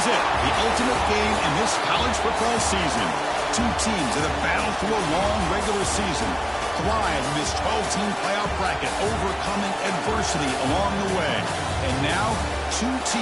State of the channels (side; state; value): both; identical; correlation 1.00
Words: it, the ultimate game in this college football season. Two teams that have battled through a long regular season, thrive in this 12-team playoff bracket, overcoming adversity along the way. And now, two